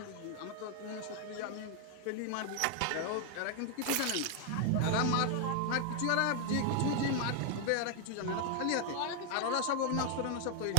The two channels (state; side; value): different; both; correlation 0.00